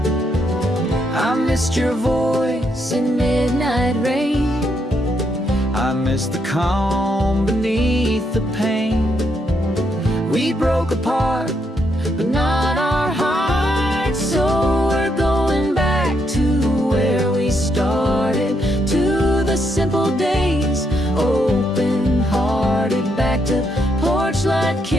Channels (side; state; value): both; normal; correlation 0.77